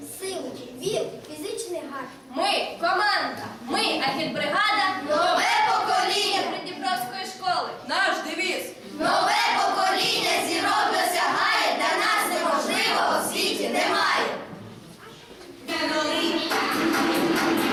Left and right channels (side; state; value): both; identical; correlation 1.00